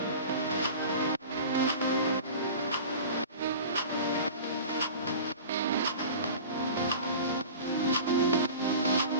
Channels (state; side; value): inverted; both; correlation -0.37